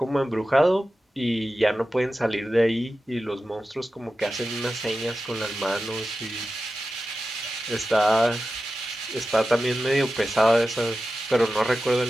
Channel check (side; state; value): both; normal; correlation 0.93